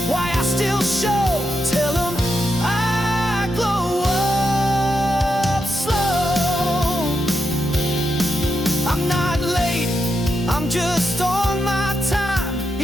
why I still show, tell them I'm just on my time.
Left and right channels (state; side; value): normal; both; correlation 0.85